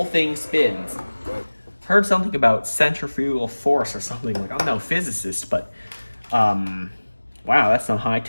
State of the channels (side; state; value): both; inverted; correlation -1.00